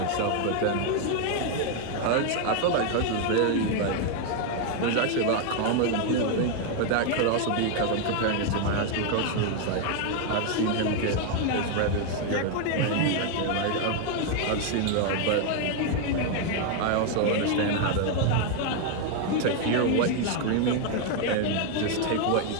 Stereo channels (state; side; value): different; both; correlation 0.01